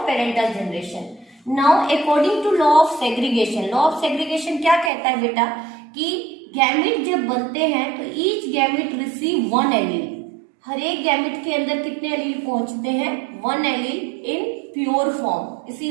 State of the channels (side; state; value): left; drops out; at 4.9 s